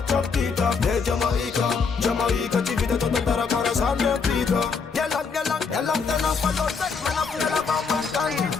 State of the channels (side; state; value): right; quieter; 5.3 dB